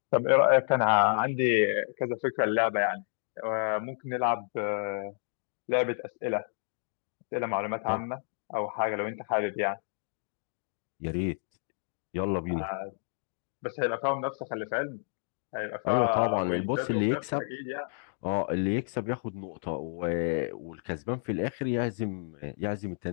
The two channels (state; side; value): silent; right; digital silence